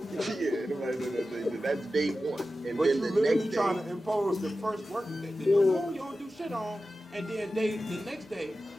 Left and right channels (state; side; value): normal; both; correlation 0.93